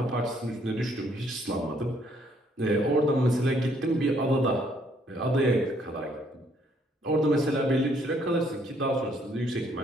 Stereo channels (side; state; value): both; normal; correlation 0.67